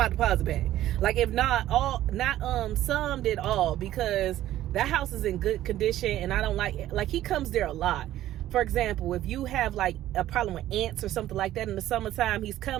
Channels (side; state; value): left; quieter; 13.6 dB